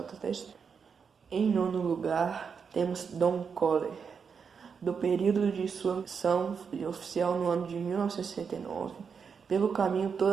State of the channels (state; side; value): quieter; left; 6.2 dB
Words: da história. Em 9º lugar, temos Don Coller. Do período de sua missão oficial no ano de 1969, pelo caminho todo